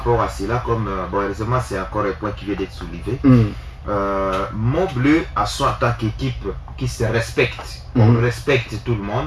à cela, comme bon, heureusement c'est encore un point qui vient d'être soulevé. Montbleu a son en tant qu'équipe qui se respecte. On respecte tout le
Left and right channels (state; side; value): identical; both; correlation 1.00